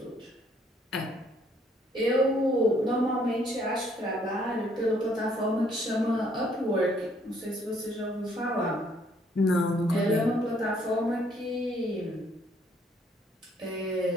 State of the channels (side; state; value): both; normal; correlation 0.65